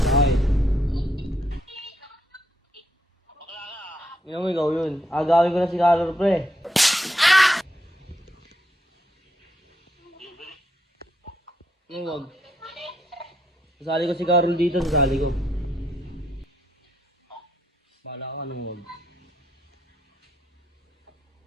Yung ikaw yun. Agawin ko na si Carol, pre. Yung wag. Sasali ko si Carol dito, sasali ko. Bala ko anong wag.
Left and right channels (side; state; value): both; normal; correlation 0.77